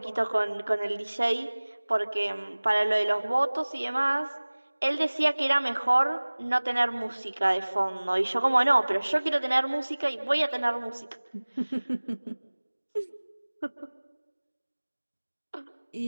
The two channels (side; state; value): both; inverted; correlation -1.00